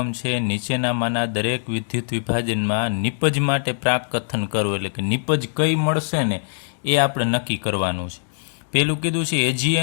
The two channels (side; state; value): right; silent; digital silence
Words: છે નીચેનામાંના દરેક વિદ્યુત વિભાજનમાં નિપજ માટે પ્રાકકથન કરવું. એટલે કે નિપજ કઈ મળશે ને એ આપણે નક્કી કરવાનું છે. પેલું કીધું છે